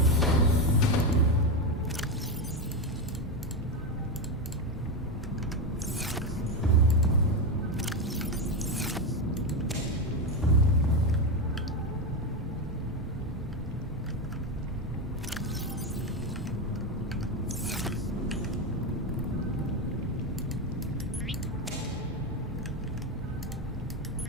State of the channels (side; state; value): both; normal; correlation 0.11